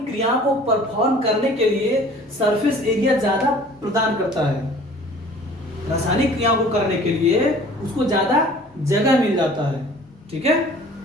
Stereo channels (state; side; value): normal; both; correlation 0.49